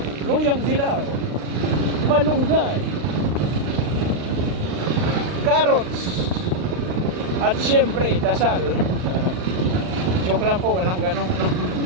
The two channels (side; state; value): left; late; 39 ms